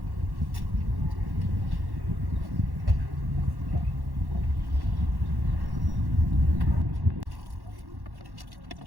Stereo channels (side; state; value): left; late; 1.1 ms